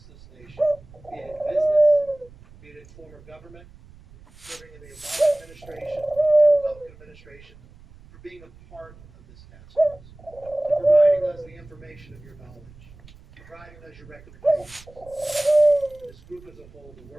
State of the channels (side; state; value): right; noise; rumble, 23 dB below the sound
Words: this nation, be it in business, be it in former government, serving in the Obama administration, the Republican administration, for being a part of this task force, for providing us the information of your knowledge, providing us your recommendations. This group as a whole, the